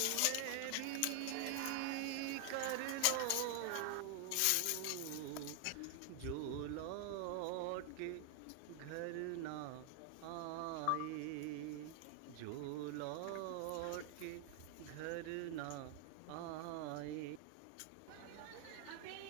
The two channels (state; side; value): different; both; correlation 0.00